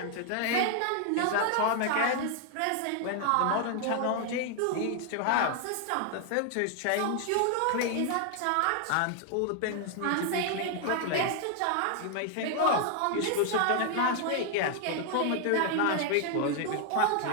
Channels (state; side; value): different; both; correlation 0.00